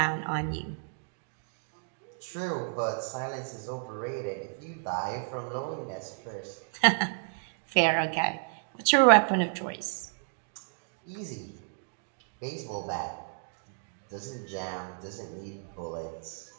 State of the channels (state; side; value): silent; left; digital silence